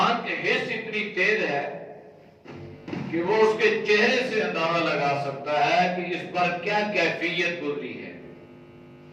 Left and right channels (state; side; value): identical; both; correlation 1.00